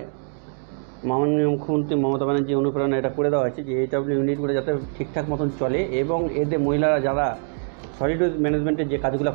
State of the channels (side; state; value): left; silent; digital silence